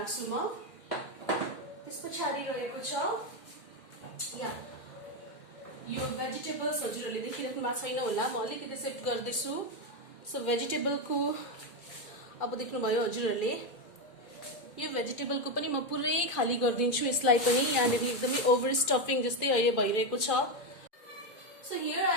म। त्यस पछाडि रहेको छ या यो भेजिटेबल्स, हजुरहरूले देखिराख्नु भएको छैन होला, म अलिकति सेट गर्दैछु। सो भेजिटेबलको अब देख्नुभयो हजुरहरूले, यो भेजिटेबलको पनि म पुरै खाली गरिदिन्छु। यसलाई पनि यहाँनिर एकदमै ओभर स्टफिङ जस्तै अहिले भइरहेको छ। सो हियर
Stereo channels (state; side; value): late; right; 2.1 ms